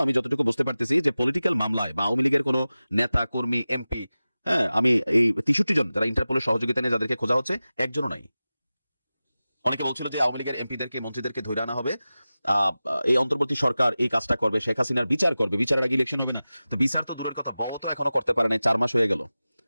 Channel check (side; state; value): both; inverted; correlation -0.96